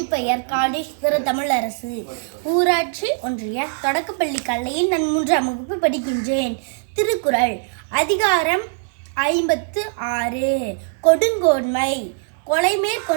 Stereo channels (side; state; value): left; silent; digital silence